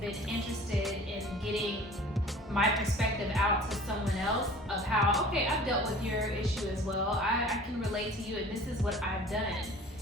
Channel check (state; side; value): normal; both; correlation 0.45